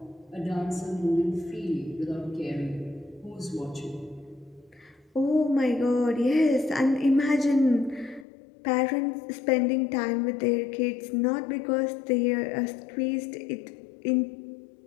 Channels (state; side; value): drops out; right; at 8.2 s